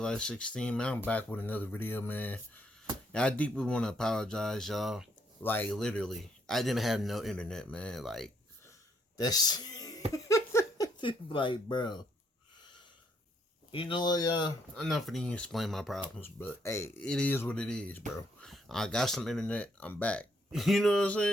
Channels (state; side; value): normal; both; correlation 0.72